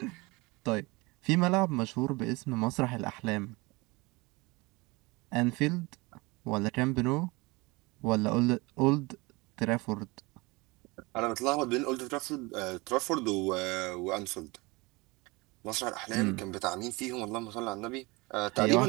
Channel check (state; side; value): quieter; left; 24.4 dB